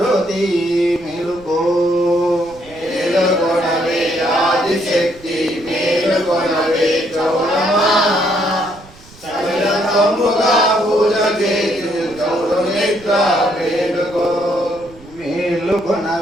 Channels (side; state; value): right; noise; rumble, 23 dB below the sound